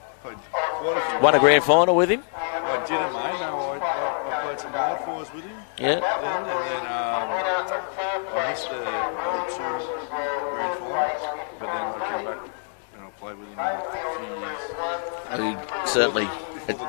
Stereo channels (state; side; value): silent; right; 61 dB below the other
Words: played quite a few. Won a grand final with him. I didn't, mate. No, I played some wildfires with him. Yeah. Then I missed the 02 grand final, but then I came back and I played with him in a few years. Certainly. Before